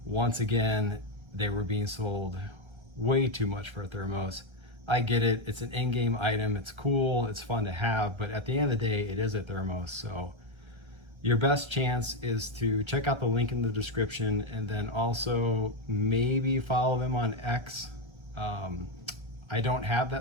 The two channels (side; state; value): left; late; 1.3 ms